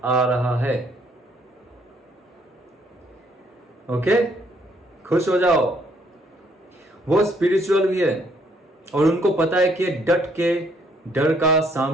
आ रहा है। ओके, खुश हो जाओ। वो स्पिरिचुअल भी है, और उनको पता है कि डट के डर का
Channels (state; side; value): normal; both; correlation 0.67